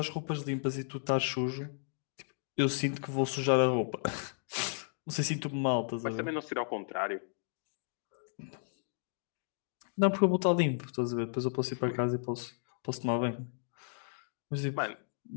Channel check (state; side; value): silent; right; digital silence